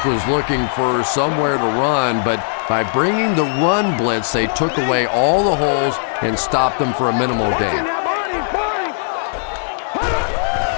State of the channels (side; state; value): right; silent; digital silence